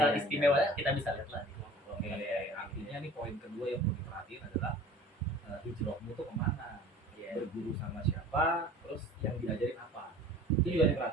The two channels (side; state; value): both; normal; correlation 0.45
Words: iya, iya. istimewa, kita bisa lihat lah di kelompok-kelompok. Artinya nih poin kedua yang perlu diperhatiin adalah hijrahmu tuh kemana, berguru sama siapa, terus yang diajarin apa, itu juga